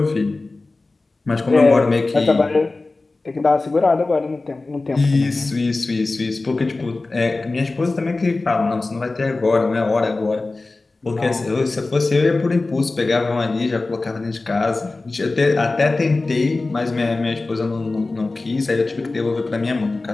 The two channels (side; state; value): right; quieter; 3.4 dB